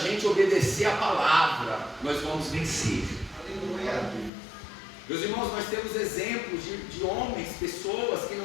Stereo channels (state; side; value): drops out; right; at 4.3 s